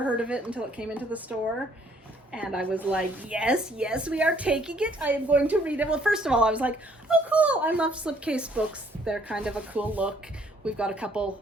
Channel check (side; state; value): both; normal; correlation 0.64